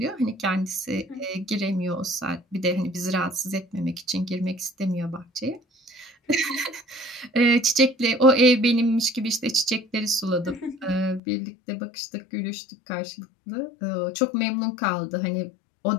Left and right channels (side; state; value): right; drops out; at 11.2 s